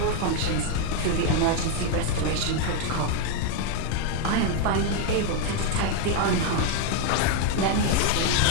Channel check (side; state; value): both; different; correlation 0.01